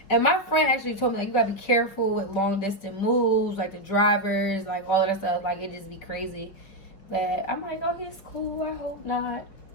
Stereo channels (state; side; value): late; right; 5.3 ms